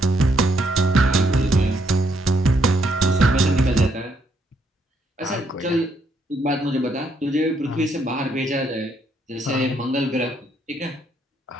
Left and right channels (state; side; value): normal; both; correlation 0.73